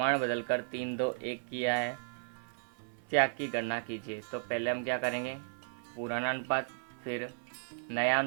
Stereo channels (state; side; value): silent; left; 55 dB below the other